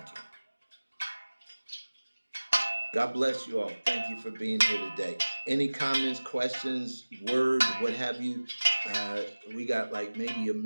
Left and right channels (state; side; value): inverted; both; correlation -1.00